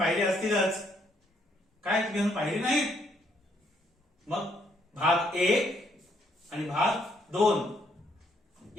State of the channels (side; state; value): both; normal; correlation 0.70